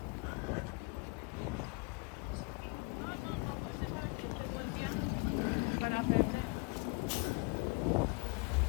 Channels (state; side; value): quieter; right; 27.5 dB